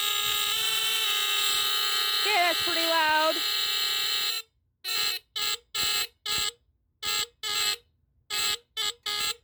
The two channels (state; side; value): identical; both; correlation 1.00